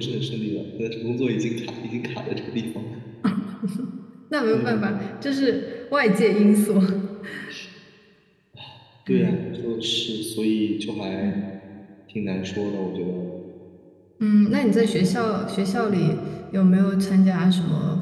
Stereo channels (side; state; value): both; identical; correlation 1.00